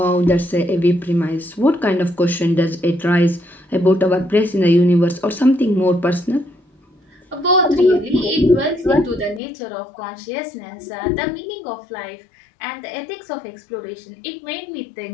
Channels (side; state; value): right; drops out; at 9.4 s